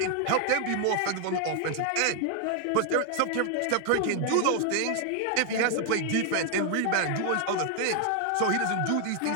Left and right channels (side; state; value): both; different; correlation 0.00